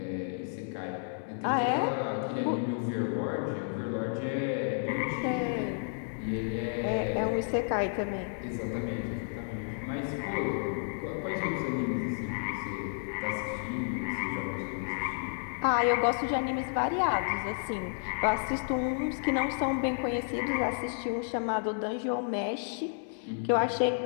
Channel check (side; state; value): right; silent; digital silence